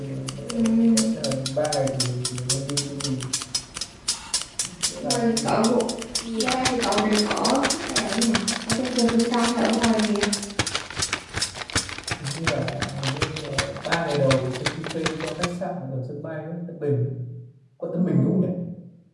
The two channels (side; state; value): both; identical; correlation 1.00